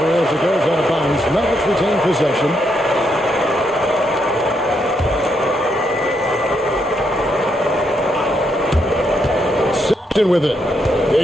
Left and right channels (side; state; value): both; normal; correlation 0.78